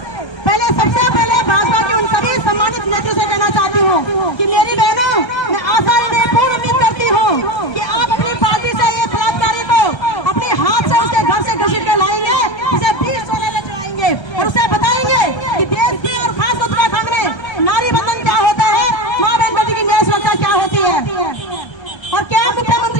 सबसे पहले भाजपा के उन सभी सम्मानित नेताओं से कहना चाहती हूँ कि मेरी बहनों, मैं आशा पूर्ण उम्मीद करती हूँ कि आप अपनी पार्टी से ये बलात्कारी को अपने हाथ से उसके घर से घसीट के लाएंगे, उसे 20 सोने में चढ़ाएंगे और उसे बताएंगे कि देश की और खास उत्तराखंड में नारी बंधन क्या होता है, माँ बहन बेटी की न्याय सुरक्षा क्या होती है। और क्या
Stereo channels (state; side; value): late; right; 1.3 ms